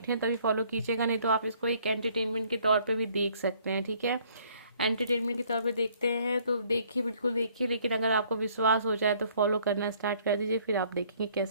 हैं तभी फॉलो कीजिएगा, नहीं तो आप इसको एक एंटरटेनमेंट के तौर पे भी देख सकते हैं, ठीक है। एंटरटेनमेंट के तौर पे देखते हैं तो देखिए, बिल्कुल देखिए, लेकिन अगर आपको विश्वास हो जाए तो फॉलो करना स्टार्ट कर दीजिए, फिर आप देखेंगे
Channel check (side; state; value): both; inverted; correlation -0.61